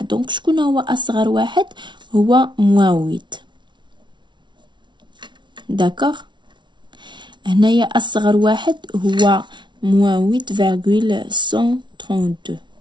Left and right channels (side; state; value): left; late; 0.23 ms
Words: دونك شكون هو اصغر واحد؟ هو -8. داكوغ. هنايا اصغر واحد هو -8,132.